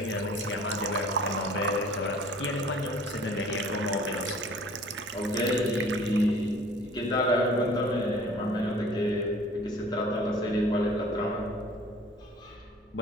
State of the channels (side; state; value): both; normal; correlation 0.49